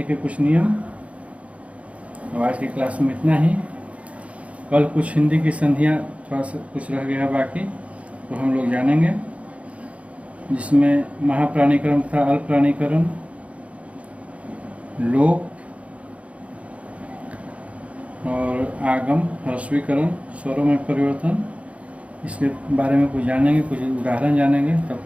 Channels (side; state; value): left; late; 0.064 ms